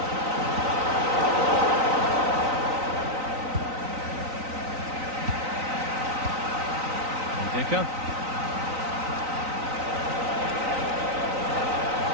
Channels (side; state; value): left; late; 3.9 ms